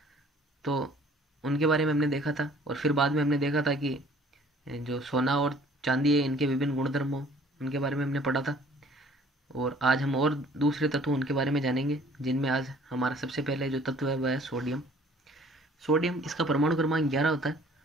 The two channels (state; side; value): normal; both; correlation 0.55